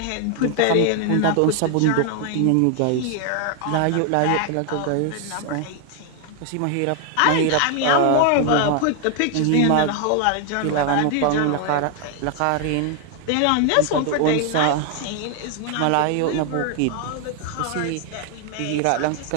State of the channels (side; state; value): both; different; correlation 0.00